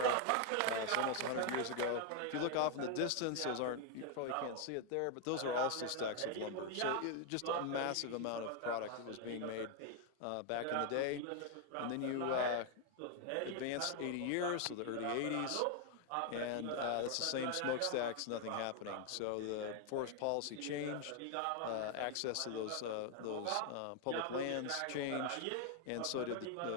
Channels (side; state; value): both; different; correlation 0.00